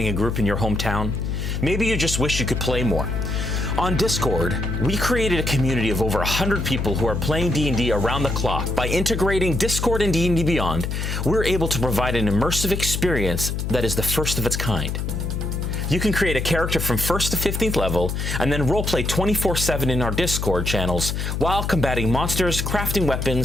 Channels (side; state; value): left; noise; hum, 2 dB below the sound